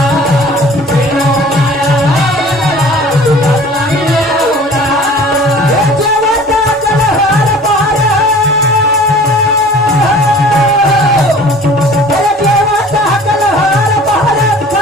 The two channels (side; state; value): both; normal; correlation 0.46